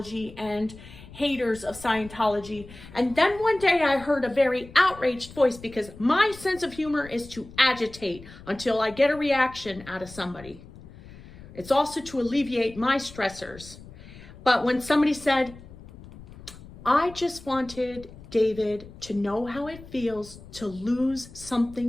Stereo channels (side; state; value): left; noise; rumble, 18 dB below the sound